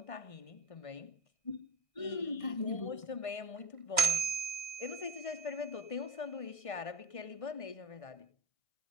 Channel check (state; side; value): late; right; 1.6 ms